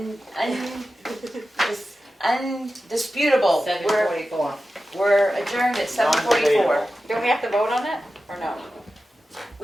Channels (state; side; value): normal; both; correlation 0.93